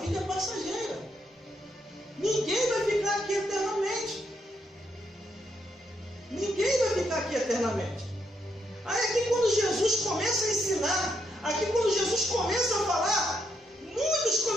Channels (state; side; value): normal; both; correlation 0.78